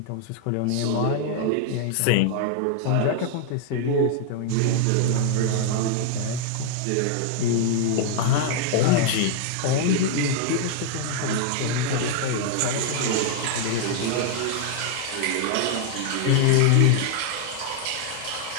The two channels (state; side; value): different; both; correlation 0.00